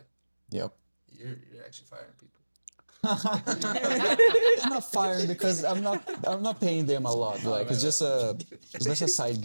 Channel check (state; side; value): inverted; both; correlation -1.00